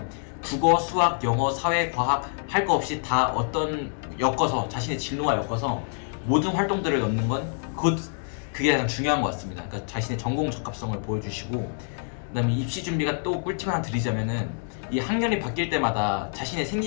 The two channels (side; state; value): right; silent; digital silence